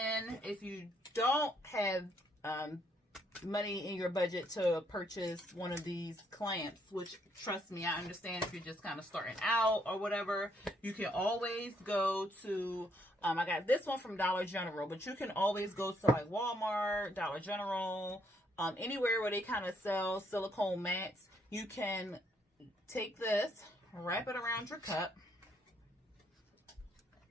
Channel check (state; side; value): normal; both; correlation 0.71